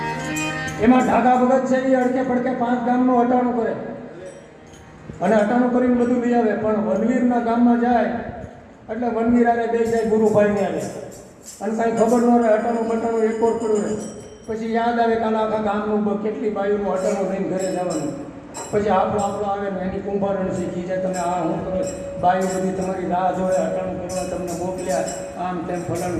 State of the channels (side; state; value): both; identical; correlation 1.00